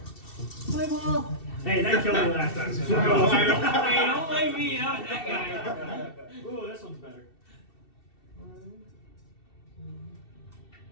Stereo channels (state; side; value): late; right; 2.7 ms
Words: My ball. Hey, that killed me last time. So Hey, don't blame me. Not that guy. Ooh, this one's better.